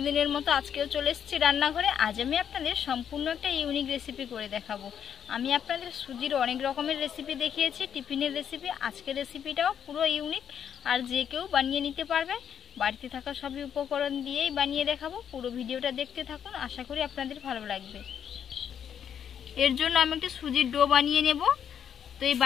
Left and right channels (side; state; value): right; quieter; 8.5 dB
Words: মতো আজকেও চলে এসেছি রান্নাঘরে। আজ আমি আপনাদের সম্পূর্ণ একটা ইউনিক রেসিপি করে দেখাবো। আমি আপনাদের সুজির অনেক রকমের রেসিপি দেখিয়েছি, টিফিনের রেসিপি। আজকের রেসিপিটাও পুরো ইউনিক, আর যে কেউ বানিয়ে নিতে পারবে। বাড়িতে থাকা সবই উপকরণ দিয়েই বানিয়ে দেখাবো। পুরো ভিডিওটা দেখতে থাকুন, আশা করি আপনাদের ভালো লাগবে। এর জন্য আমি একটা সুজির ডো বানিয়ে নেব। তো এই